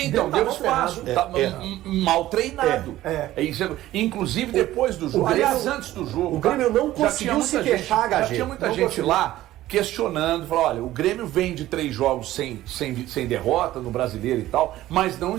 Então, deu Tava espaço. ferrado. Mal treinado. Isso. Inclusive depois do jogo. Grêmio- Aliás, antes do jogo. o Grêmio não já conseguiu tinha muita se gente- queixar, Já HG. tinha muita Não gente conseguiu. lá questionando, falou, olha, o Grêmio vem de 3 jogos sem derrota no Brasileiro e tal, mas não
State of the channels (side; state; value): left; quieter; 14.9 dB